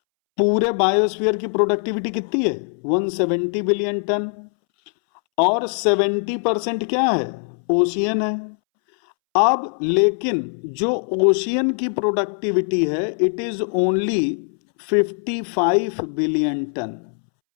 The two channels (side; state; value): right; silent; 65 dB below the other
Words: पूरे बायोस्फीयर की प्रोडक्टिविटी कितनी है, 170 बिलियन टन, और 70% क्या है, ओशियन है। अब लेकिन जो ओशियन की प्रोडक्टिविटी है it is only 55 billion ton.